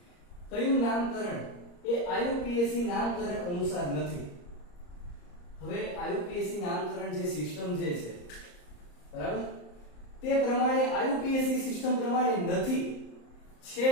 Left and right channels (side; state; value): right; late; 34 ms